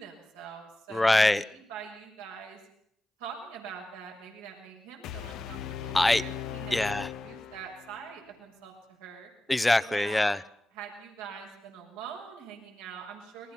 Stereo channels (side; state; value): both; normal; correlation 0.94